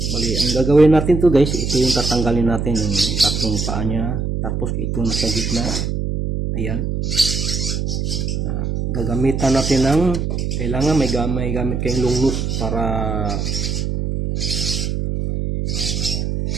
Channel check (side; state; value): right; noise; hum, 1 dB below the sound